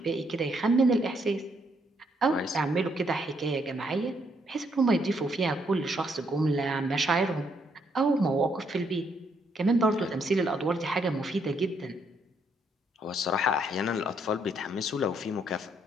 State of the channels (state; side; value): normal; both; correlation 0.73